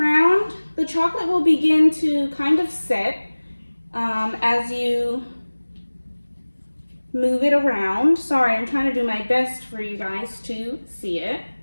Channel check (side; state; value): both; inverted; correlation -1.00